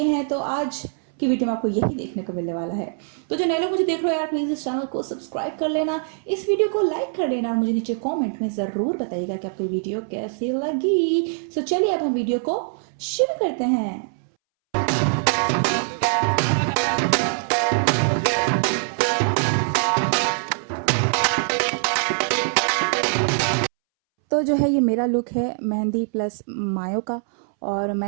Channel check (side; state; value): left; silent; 63 dB below the other